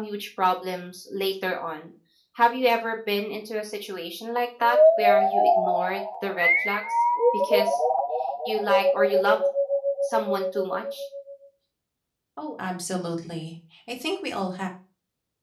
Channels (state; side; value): identical; both; correlation 1.00